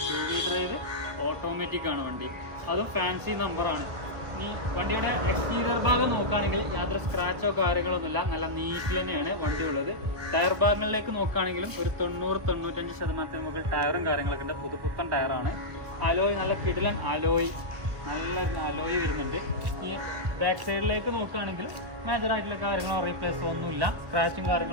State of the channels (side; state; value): left; late; 1.4 ms